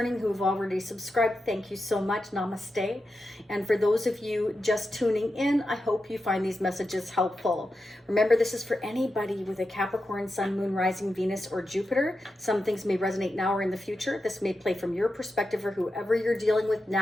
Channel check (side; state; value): both; normal; correlation 0.89